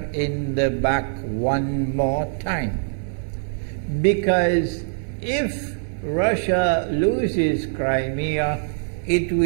in the back one more time. Because if Russia loses Crimea, it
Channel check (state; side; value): silent; left; 57 dB below the other